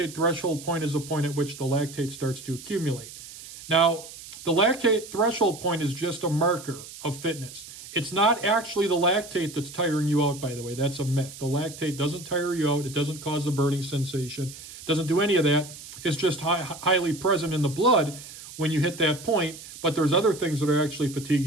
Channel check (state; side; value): noise; right; hiss, 15 dB below the sound